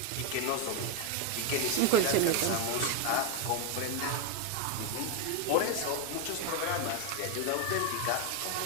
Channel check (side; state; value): both; different; correlation 0.02